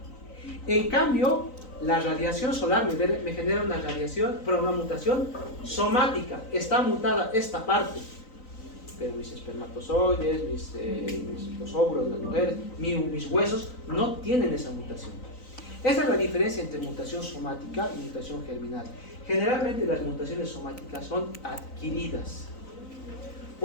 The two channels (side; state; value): right; late; 3.9 ms